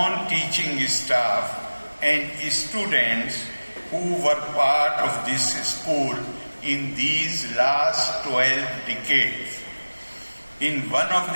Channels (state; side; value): inverted; both; correlation -1.00